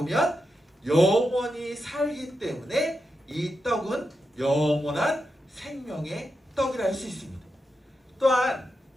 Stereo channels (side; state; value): both; normal; correlation 0.87